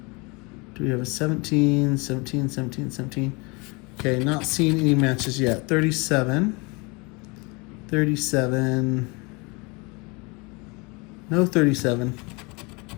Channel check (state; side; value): quieter; right; 28.3 dB